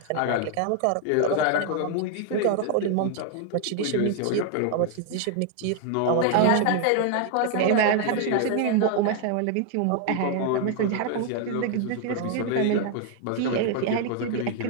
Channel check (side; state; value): both; different; correlation 0.00